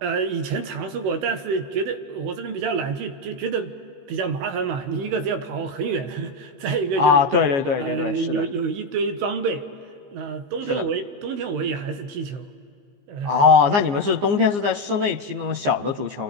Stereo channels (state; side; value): late; left; 15 ms